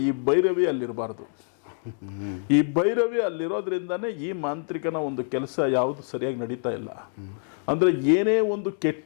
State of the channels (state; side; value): silent; right; 61 dB below the other